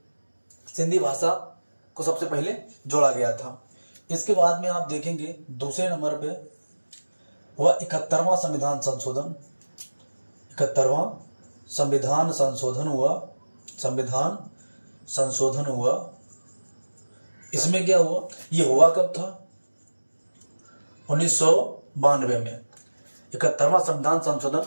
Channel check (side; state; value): both; inverted; correlation -1.00